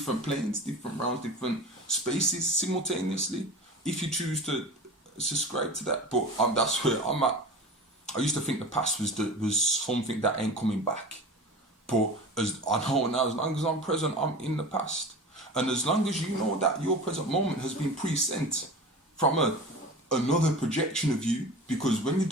planes, different realms, different spaces simultaneously, if you choose to subscribe to that. But that's where I'm at. I used to think the past was something that ain't coming back. But as I know now, as long as I'm present, I'm in the past. And as long as you know that your present moment has been pre-sent from another projection of you, because when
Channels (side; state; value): both; normal; correlation 0.34